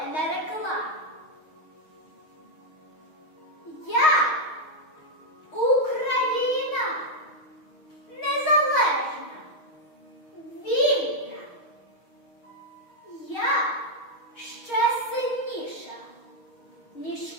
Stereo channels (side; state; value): right; late; 6.5 ms